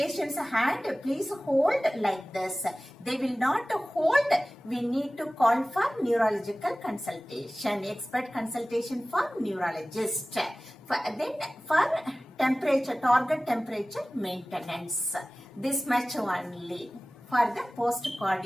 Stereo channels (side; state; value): both; normal; correlation 0.98